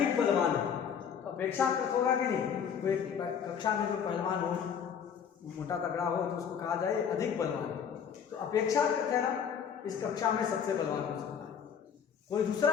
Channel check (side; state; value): right; quieter; 7.6 dB